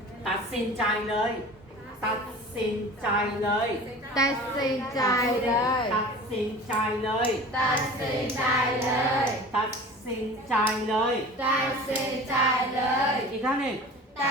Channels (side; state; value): both; normal; correlation 0.40